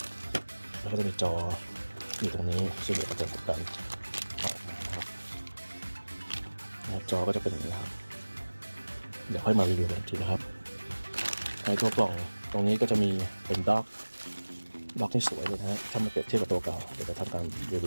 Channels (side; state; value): both; inverted; correlation -1.00